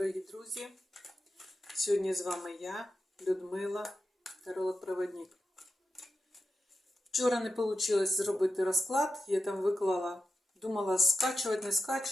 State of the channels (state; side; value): normal; both; correlation 0.90